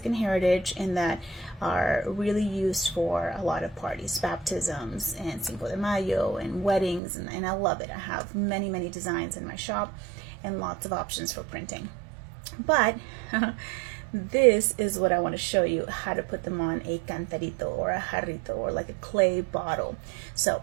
heritage and that are really used for a lot of parties, baptisms and Cinco de Mayo and weddings, and I love it. I have many, many designs in my shop and lots of options for printing. But this is what I want to show you, how to put them on a cantarito or a jarrito or like a clay bottle. So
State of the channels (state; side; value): drops out; left; at 7.0 s